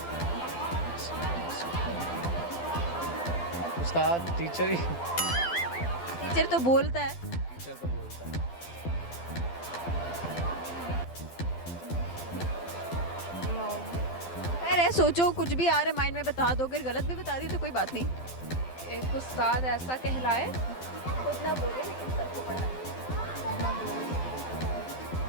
उस्ताद टीचर ही। टीचर तो बोलता है। टीचर तो बोलता है। खैर है, सोचो कुछ भी आ रहा है माइंड में बता दो, अगर गलत भी बता दी तो कोई बात नहीं। एक उस्ताद ऐसा कहलाए खुद ना बोले लेकिन सबको पढ़ाए।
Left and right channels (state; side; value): late; right; 12 ms